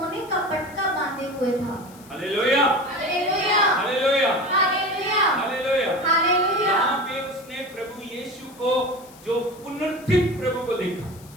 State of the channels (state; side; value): noise; left; hiss, 23 dB below the sound